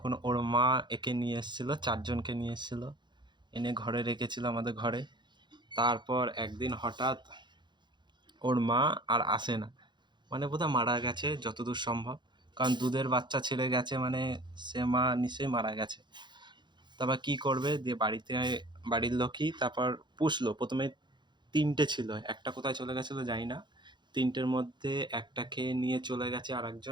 ওর মা একে নিয়ে এসেছিলো, 4জনকে নিয়ে এসেছিলো, এনে ঘরে রেখেছিল আমাদের ঘরে। তারপর একদিন হঠাৎ ওর মা আর আসে না, মানে বোধহয় মারা গেছে যতদূর সম্ভব, কারণ দুধের বাচ্চা ছেড়ে গেছে, মানে সে মা নিশ্চয়ই মারা গেছে। তারপর কি করবে, দিয়ে বাড়িতে বাড়ির লোকই তারপর পুষলো। প্রথমে 3টে ছিল, একটা কোথায় চলে গেছিলো জানি না। 3টের মধ্যে একটাকে নিয়ে চলে গেছে আর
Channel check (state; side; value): late; left; 0.22 ms